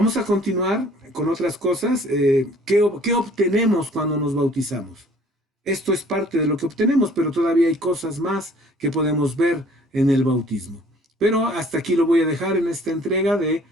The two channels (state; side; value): normal; both; correlation 0.55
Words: a continuar con otras cosas. ¿Qué obtenemos cuando nos bautizamos? Esto es parte de lo que obtenemos, pero todavía hay cosas más que podemos ver en el bautismo. Pero hasta aquí lo voy a dejar en esta entrega de